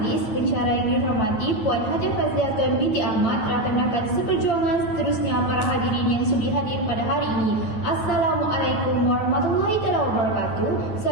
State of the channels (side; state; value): right; late; 9.2 ms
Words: pensyarah yang dihormati Puan Hajah Fazliatun binti Ahmad, rakan-rakan seperjuangan seterusnya para hadirin yang sudi hadir pada hari ini. Assalamualaikum warahmatullahi wabarakatuh.